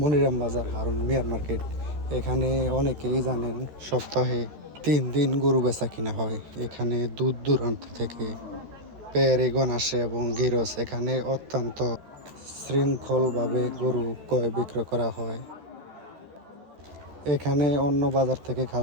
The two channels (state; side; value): late; left; 13 ms